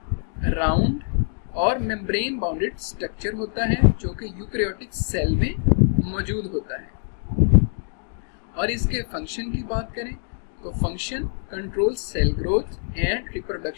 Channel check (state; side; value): silent; right; 62 dB below the other